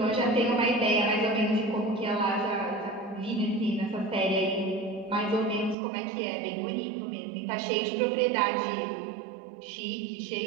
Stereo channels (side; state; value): left; drops out; at 5.8 s